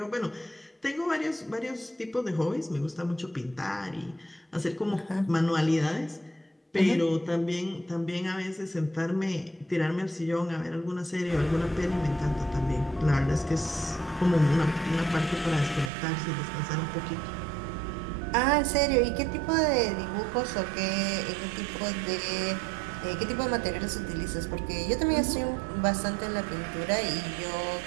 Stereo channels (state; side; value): drops out; left; at 15.9 s